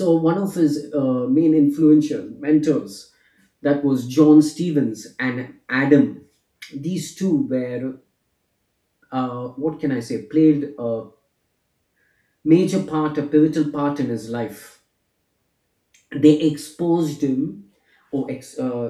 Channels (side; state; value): both; identical; correlation 1.00